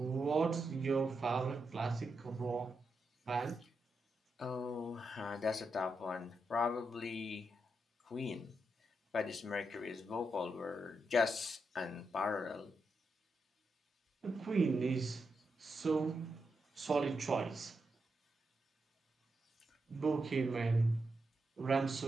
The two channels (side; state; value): both; normal; correlation 0.84